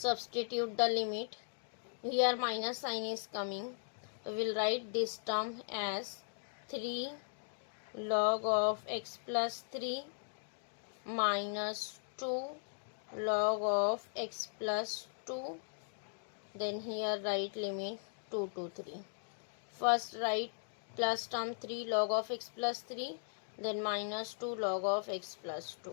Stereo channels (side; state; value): right; silent; digital silence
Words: the limit. Here minus sign is coming. We'll write this term as 3 log of x plus 3 minus 2 log of x plus 2. Then here write limit 2 to 3. First write plus term 3 log of x plus 3, then minus 2 log of x plus